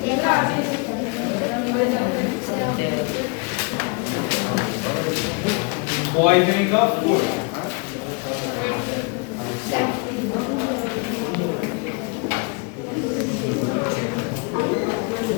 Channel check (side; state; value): right; quieter; 31.9 dB